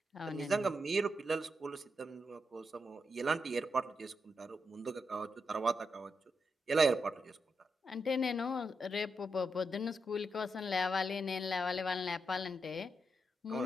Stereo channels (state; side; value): normal; both; correlation 0.84